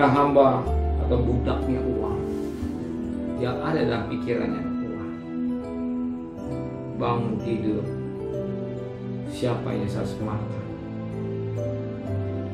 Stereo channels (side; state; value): both; identical; correlation 1.00